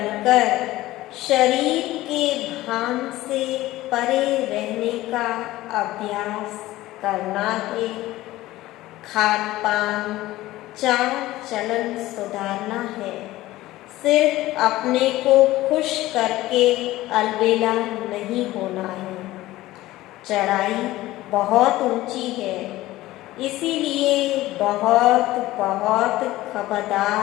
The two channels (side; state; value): right; quieter; 16.9 dB